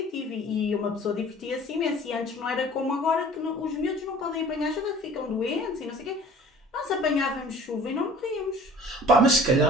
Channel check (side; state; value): both; normal; correlation 0.47